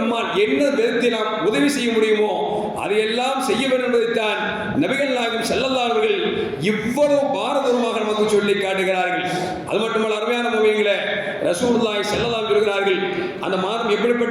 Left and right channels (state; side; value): identical; both; correlation 1.00